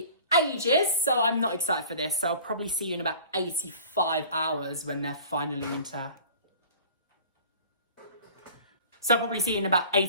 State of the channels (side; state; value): both; inverted; correlation -0.45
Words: ages, so I'm not excited for this. So I'll probably see you in about 85 hours when they're finally into... So I'll probably see you in about